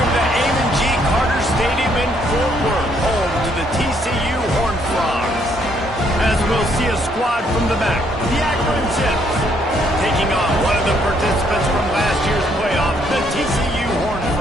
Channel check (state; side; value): normal; both; correlation 0.69